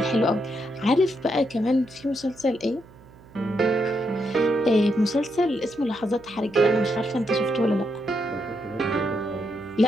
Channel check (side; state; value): right; noise; hum, 24 dB below the sound